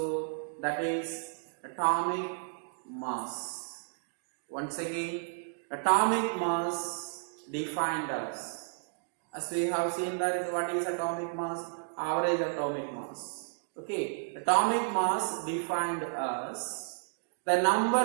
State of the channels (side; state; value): left; silent; digital silence